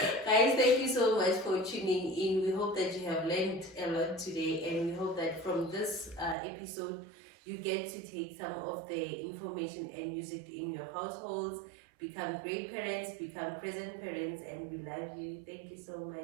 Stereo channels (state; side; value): drops out; left; at 6.4 s